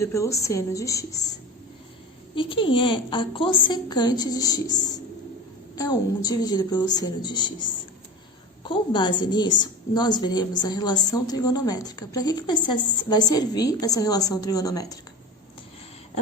pelo seno de x. E quem é a cossecante de x? É 1 dividido pelo seno de x. Com base nisso, nós veremos a relação trigonométrica. Para que vai servir essa relação trigonométrica?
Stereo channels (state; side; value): normal; both; correlation 0.31